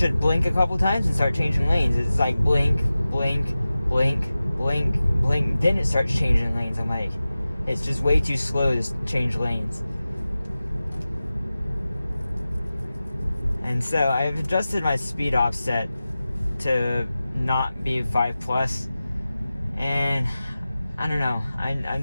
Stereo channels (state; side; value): inverted; both; correlation -0.95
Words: blink a couple times and start changing lanes. It's like blink, blink, blink, blink, blink, then it starts changing lanes. I'm like, it's just way too slow to change lanes. And so I've adjusted my speed offset to not be 5+, and I don't know, I'm